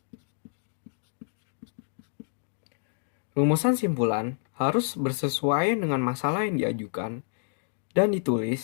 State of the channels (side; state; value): right; silent; digital silence